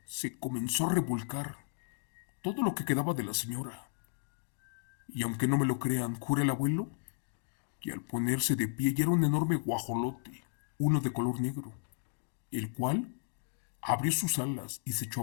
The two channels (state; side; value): silent; right; digital silence